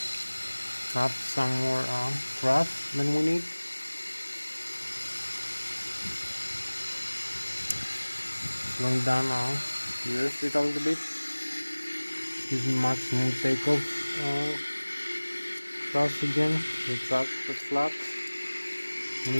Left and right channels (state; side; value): inverted; both; correlation -1.00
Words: Have some more thrust than we need. Slowing down the airspeed a little bit. Using maximum takeoff thrust again. Retract the flaps. We